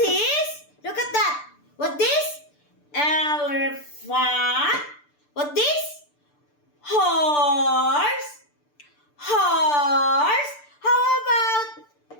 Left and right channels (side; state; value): right; late; 6.8 ms